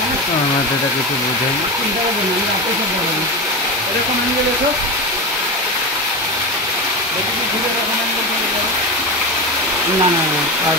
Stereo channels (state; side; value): normal; both; correlation 0.20